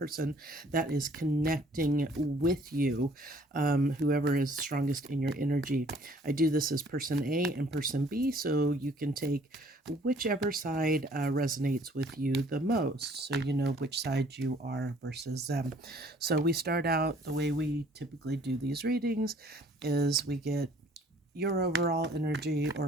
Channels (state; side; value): normal; both; correlation 0.58